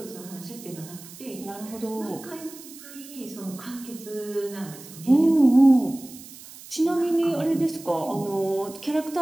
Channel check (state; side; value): noise; right; hiss, 17 dB below the sound